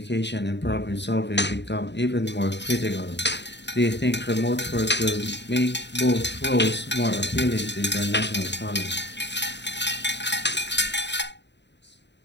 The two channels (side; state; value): right; late; 0.51 ms